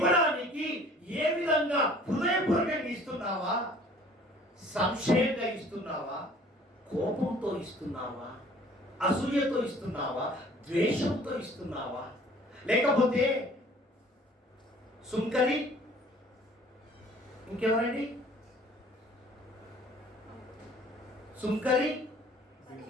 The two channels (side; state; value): both; normal; correlation 0.53